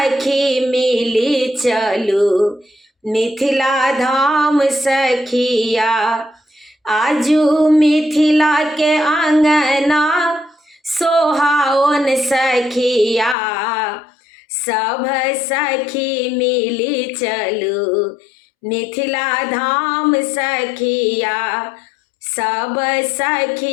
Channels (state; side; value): drops out; right; at 13.4 s